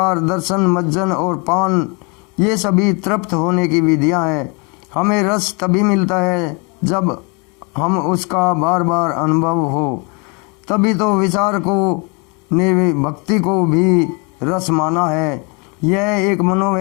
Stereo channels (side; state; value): right; quieter; 32.4 dB